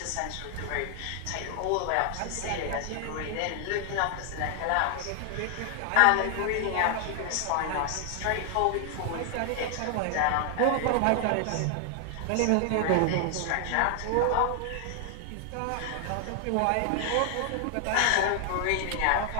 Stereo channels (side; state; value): both; different; correlation 0.00